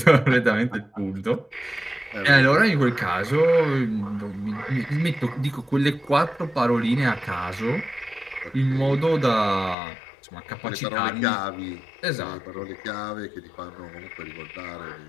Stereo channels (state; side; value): drops out; right; at 9.8 s